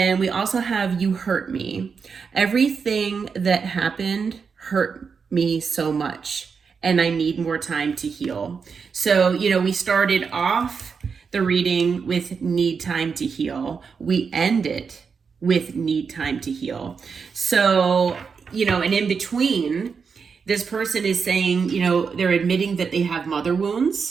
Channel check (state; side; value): quieter; left; 5.7 dB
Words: we also have you hurt me. Everything that happened hurt me so much, and I need more time to heal. So, we started off the reading with need time to heal. We end it with need time to heal. So, and in between, this person is saying, they're admitting that they have mother